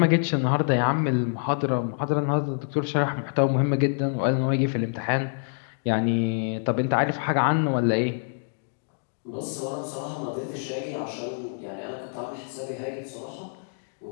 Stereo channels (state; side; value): silent; right; digital silence